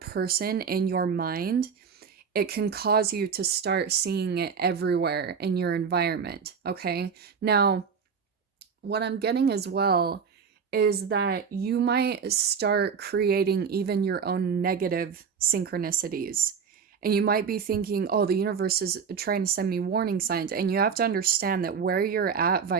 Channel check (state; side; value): quieter; left; 6.3 dB